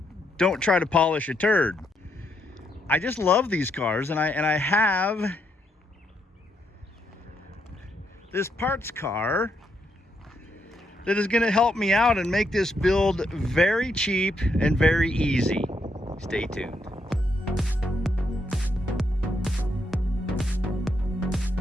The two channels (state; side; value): normal; both; correlation 0.78